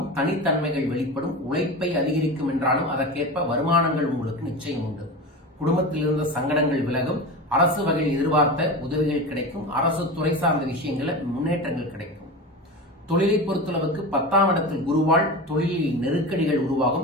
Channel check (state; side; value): normal; both; correlation 0.27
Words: தனித்தன்மைகள் வெளிப்படும். உழைப்பை அதிகரிக்கும் என்றாலும் அதற்கேற்ப வருமானங்கள் உங்களுக்கு நிச்சயம் உண்டு. குடும்பத்தில் இருந்த சங்கடங்கள் விலகும். அரசு வகையில் எதிர்பார்த்த உதவிகள் கிடைக்கும். அரசு துறை சார்ந்த விஷயங்களில் முன்னேற்றங்கள் கிடைக்கும். தொழிலை பொறுத்தளவுக்கு 10ஆம் இடத்தில் குருவால் தொழிலில் நெருக்கடிகள்